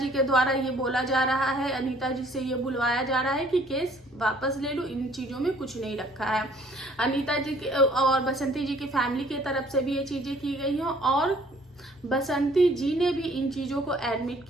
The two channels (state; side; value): normal; both; correlation 0.58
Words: के द्वारा ये बोला जा रहा है, अनीता जी से ये बुलवाया जा रहा है कि केस वापस ले लो, इन चीजों में कुछ नहीं रखा है। अनीता जी के और बसंती जी की फैमिली की तरफ से भी ये चीजें की गई हैं और बसंती जी ने भी इन चीजों को एडमिट